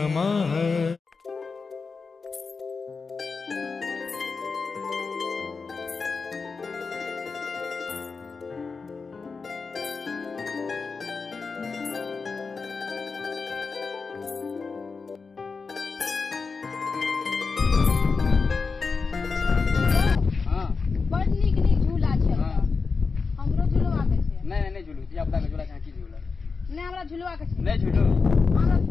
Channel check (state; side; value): quieter; right; 4.7 dB